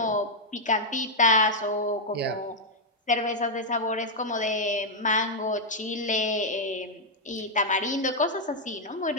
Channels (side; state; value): both; normal; correlation -0.02